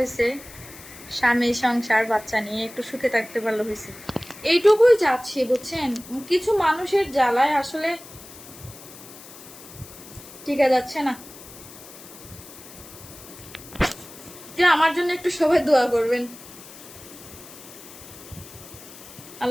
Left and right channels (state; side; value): noise; left; hiss, 17 dB below the sound